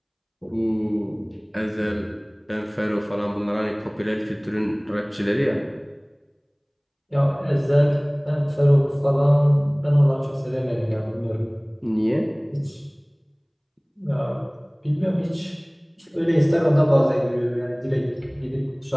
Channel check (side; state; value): both; identical; correlation 1.00